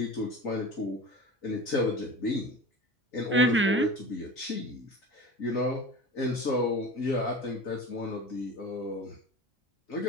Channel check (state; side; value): normal; both; correlation 0.35